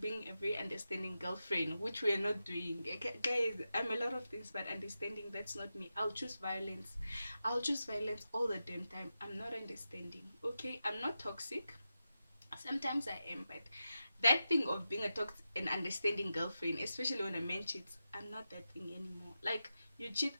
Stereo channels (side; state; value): both; inverted; correlation -0.91